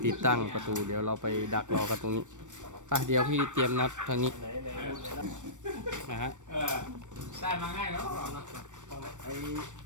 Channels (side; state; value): left; late; 0.85 ms